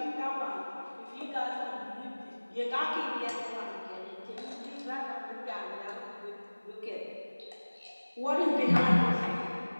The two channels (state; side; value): inverted; both; correlation -1.00